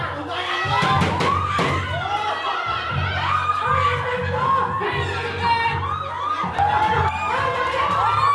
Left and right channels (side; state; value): both; identical; correlation 1.00